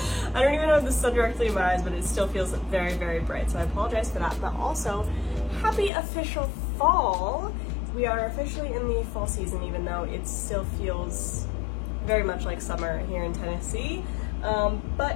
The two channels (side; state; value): right; drops out; at 5.9 s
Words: I don't even know if the sun directly in my eyes, but it still feels very, very bright, so I apologize for that. But also, happy official fall! We are officially in the fall season, even though it still feels very much like summer here in Tennessee.